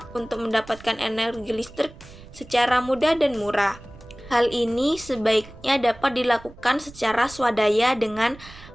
untuk mendapatkan energi listrik secara mudah dan murah. Hal ini sebaiknya dapat dilakukan secara swadaya dengan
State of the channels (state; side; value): noise; right; rumble, 19 dB below the sound